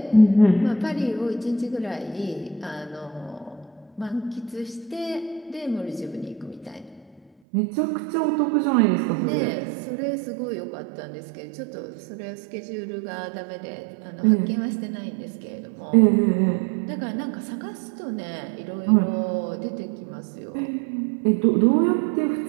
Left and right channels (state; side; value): drops out; left; at 7.3 s